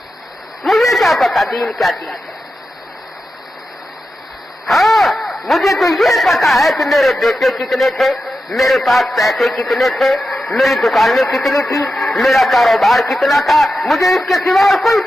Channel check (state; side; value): normal; both; correlation 0.90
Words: مجھے کیا پتا دین کیا چیز ہے۔ ہاں مجھے تو یہ پتا ہے کہ میرے بیٹے کتنے تھے، میرے پاس پیسے کتنے تھے، میری دکانیں کتنی تھی، میرا کاروبار کتنا تھا، مجھے اس کے سوا اور کوئی